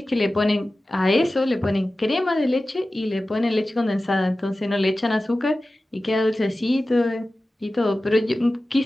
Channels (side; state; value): both; normal; correlation 0.95